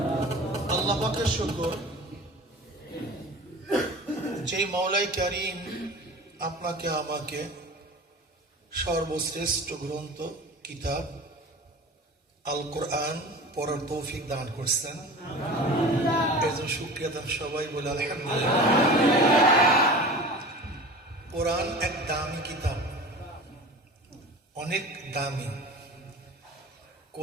الله পাকের শুকর যেই মওলাই কারীম আপনাকে আমাকে সর্বশ্রেষ্ঠ গ্রন্থ কিতাব আল কোরআন পড়ার তৌফিক দান করছেন, এর জন্য শুকরিয়া দান সবাই বলে আলহামদুলিল্লাহ। কোরআন এক দামি কিতাব, অনেক দামি।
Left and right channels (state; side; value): normal; both; correlation 0.36